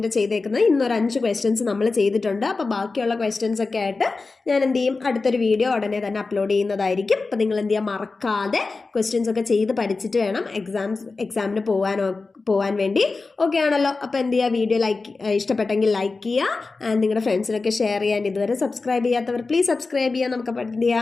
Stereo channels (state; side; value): quieter; right; 3.9 dB